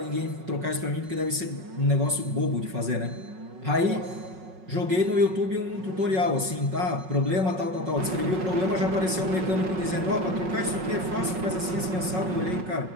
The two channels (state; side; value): late; left; 5.4 ms